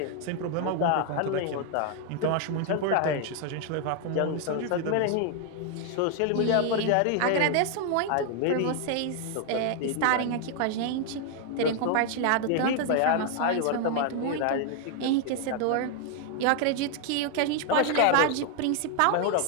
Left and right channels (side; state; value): both; different; correlation 0.00